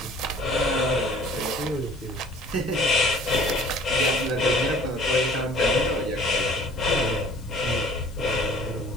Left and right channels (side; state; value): left; noise; hiss, 27 dB below the sound